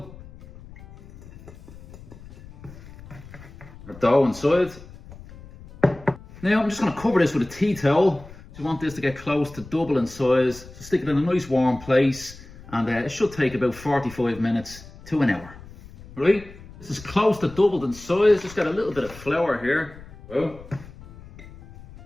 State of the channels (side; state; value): left; noise; rumble, 18 dB below the sound